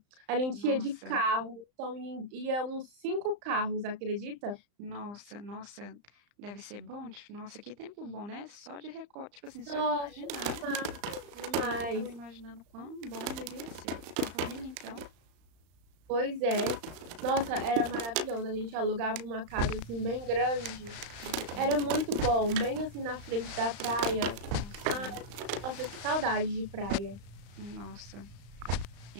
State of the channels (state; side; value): late; left; 35 ms